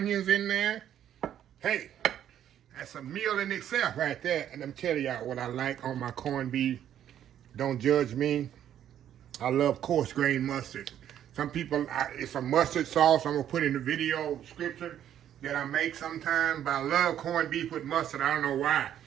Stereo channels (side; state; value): left; quieter; 10.5 dB